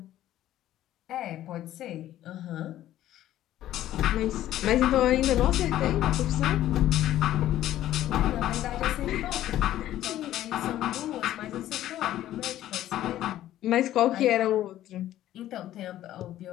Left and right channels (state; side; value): quieter; right; 13.2 dB